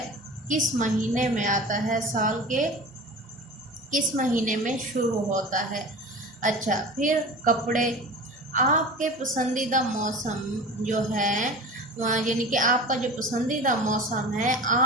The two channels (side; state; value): both; normal; correlation 0.34